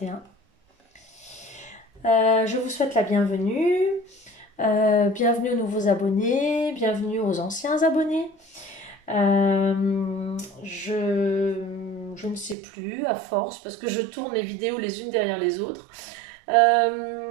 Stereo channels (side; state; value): left; drops out; at 12.6 s